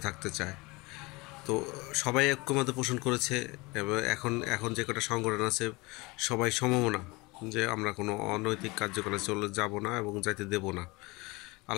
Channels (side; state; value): right; quieter; 24.4 dB